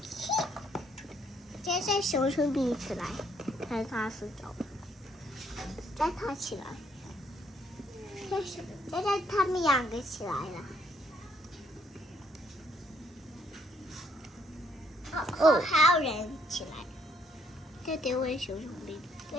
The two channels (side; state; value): both; normal; correlation 0.69